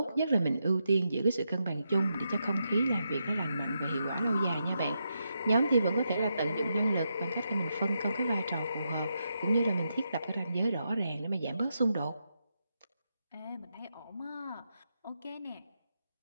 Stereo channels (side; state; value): both; inverted; correlation -0.84